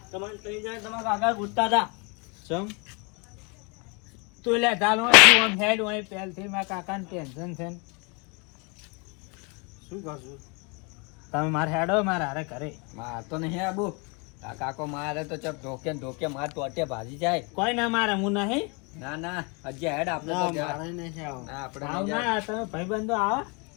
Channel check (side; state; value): right; quieter; 32.0 dB